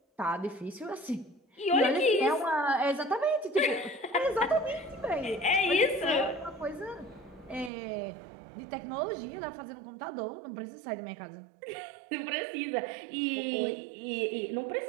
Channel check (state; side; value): drops out; left; at 7.7 s